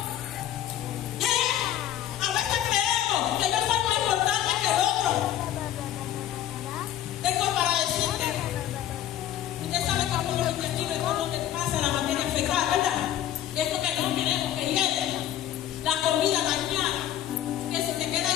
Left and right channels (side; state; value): right; quieter; 11.7 dB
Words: A veces creemos que yo soy más importante que el otro. Tengo para decirte, usted sabe que por los intestinos es por donde pasa la materia fecal, ¿verdad? Es lo que no queremos que llegue. La comida dañada, que si te queda